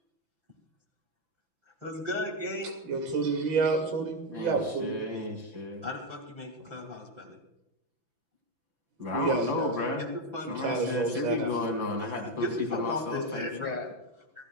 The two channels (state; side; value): late; left; 6.0 ms